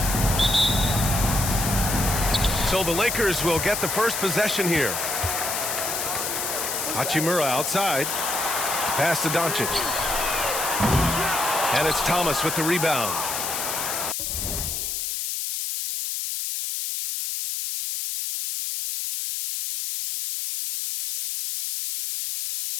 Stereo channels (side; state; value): left; noise; hiss, 2 dB below the sound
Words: So the Lakers will get the first possession here. Hachimura outside. Pass to Doncic. And it's Thomas with the rebound.